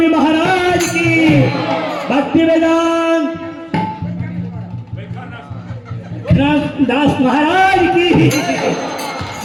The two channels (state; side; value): identical; both; correlation 1.00